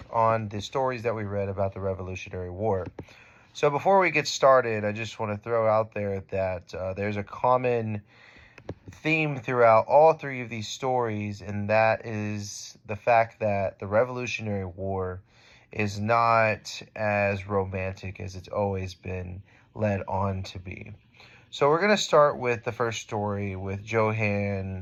on the stories that we read about the Revolutionary War. So, before we get started, I just want to throw out there that there's a common theme throughout all three of these stories, and that is the fact that the Revolutionary War is not as romantic as it's always been led on to be. So, we're going to start with the first story with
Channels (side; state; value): both; identical; correlation 1.00